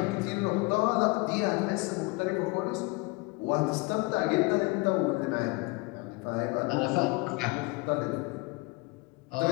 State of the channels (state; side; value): quieter; right; 25.6 dB